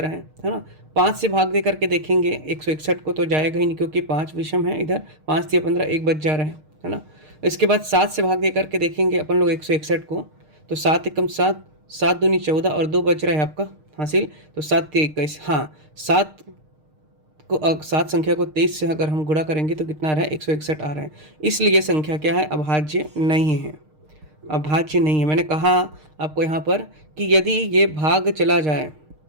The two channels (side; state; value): left; late; 6.5 ms